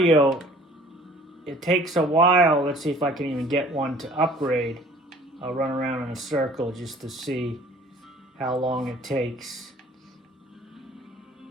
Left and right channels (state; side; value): normal; both; correlation 0.52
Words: it takes a while. Let's see if I can even get one to upgrade. I'll run around in a circle just to see how long it takes.